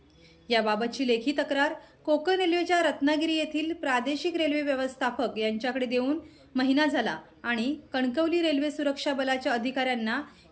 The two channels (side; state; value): both; identical; correlation 1.00